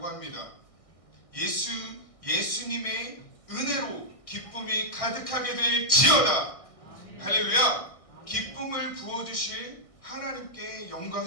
합니다. 예수님의 은혜로 기쁨이 가득하게 될지어다. 할렐루야. 기쁨을 부어주실 하나님께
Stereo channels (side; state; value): right; late; 1.6 ms